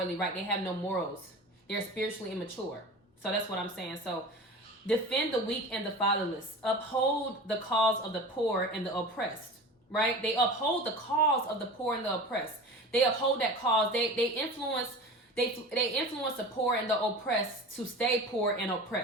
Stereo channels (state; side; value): normal; both; correlation 0.35